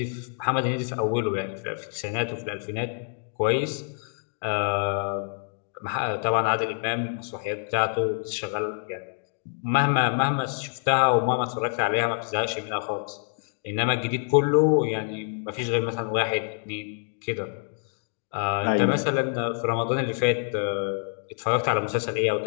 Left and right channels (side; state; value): right; silent; 61 dB below the other